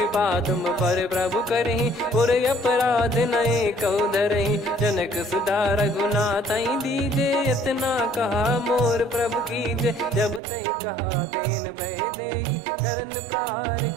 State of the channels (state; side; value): drops out; left; at 10.4 s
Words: तुम पर प्रभु करहि, पुर अपराध नए कौ धरहि। जनक सुधा रघुनाथ दीजे, इतना कहा मोर प्रभु कीजे। जब तई कहा देन भय देहि, चरण प्रार